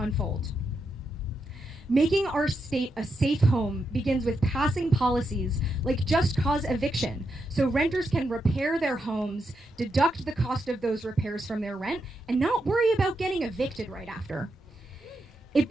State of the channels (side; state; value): both; normal; correlation 0.84